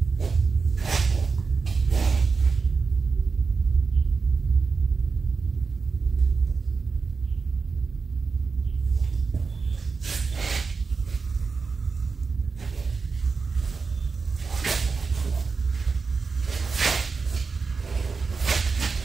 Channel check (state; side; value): quieter; left; 4.7 dB